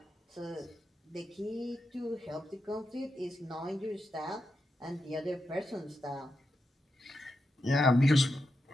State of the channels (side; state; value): both; normal; correlation 0.86